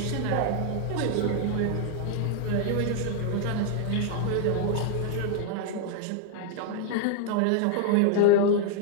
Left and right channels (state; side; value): different; both; correlation 0.00